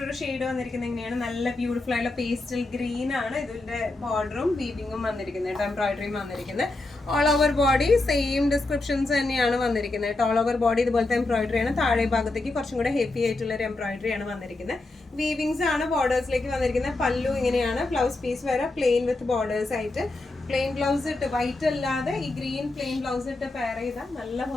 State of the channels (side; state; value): right; quieter; 3.0 dB